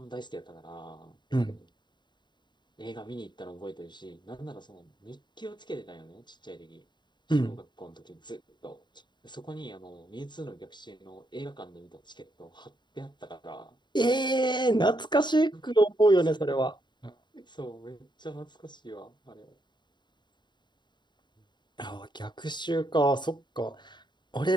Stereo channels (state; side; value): late; right; 0.22 ms